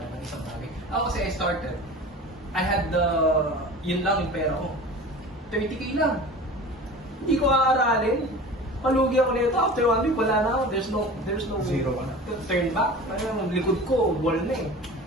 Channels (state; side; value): normal; both; correlation 0.37